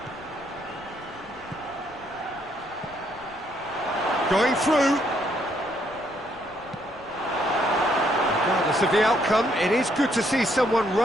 Going through. Regardless of the outcome, it is good to see someone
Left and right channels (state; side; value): noise; left; rumble, 24 dB below the sound